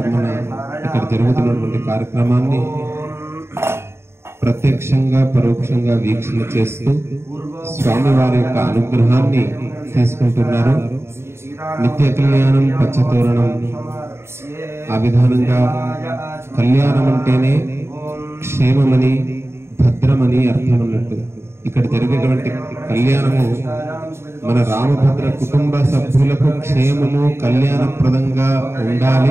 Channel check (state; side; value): late; left; 0.12 ms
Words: ఇక్కడ జరుగుతున్నటువంటి కార్యక్రమాన్ని ప్రత్యక్షంగా పరోక్షంగా వీక్షణ చేస్తూ స్వామివారి యొక్క అనుగ్రహాన్ని తీసుకుంటున్నారు. నిత్య కళ్యాణం పచ్చతోరణం ఆ విధానంగా కళ్యాణం అంటేనే క్షేమమని భద్రమని అర్థం అన్నట్టు ఇక్కడ జరిగేటువంటి కళ్యాణము మన రామభద్ర కుటుంబ సభ్యులకు క్షేమము కళ్యాణప్రదంగా